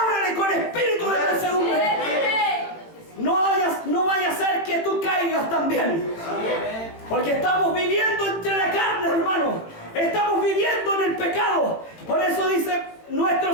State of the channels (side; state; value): right; late; 18 ms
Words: con espíritu de mansedumbre. No vaya a ser que tú caigas también. Porque estamos viviendo entre la carne, hermano. Estamos viviendo en el pecado. Por eso dice nuestro